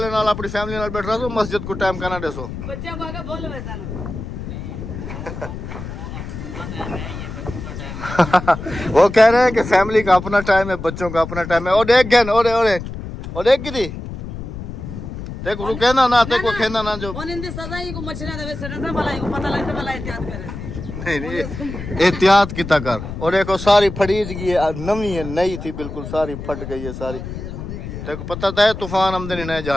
नाल अपनी फैमिली नाल बैठ रहा हो मस्जिद को टाइम करना देसो। बच्चों को आगे बोल वैसा ना। वो कह रहे हैं कि फैमिली का अपना टाइम है, बच्चों का अपना टाइम है। और एक गन और एक गिरी ते को कहना ना ते को कहना ना जो और इंदी सजा ही को मछलियां दे सड़ा से भलाई को पता लगता भलाई एहतियात करे। नहीं एहतियात की कर। और देखो सारी फड़ीज गई है, नवी है, नई थी बिल्कुल, सारी फट गई है सारी। तेको पता था है तूफान आमदनी नए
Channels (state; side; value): noise; left; rumble, 9 dB below the sound